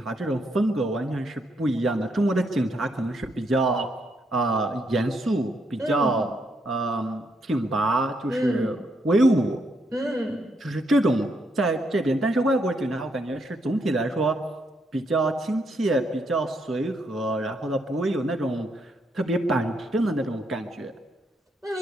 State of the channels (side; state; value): both; normal; correlation 0.76